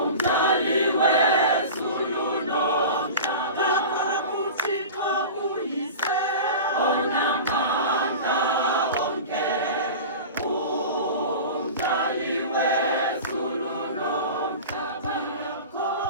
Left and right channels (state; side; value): inverted; both; correlation -0.33